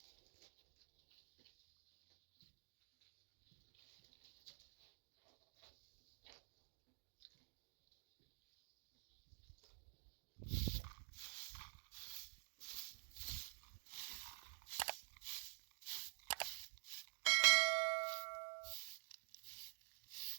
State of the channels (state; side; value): silent; left; digital silence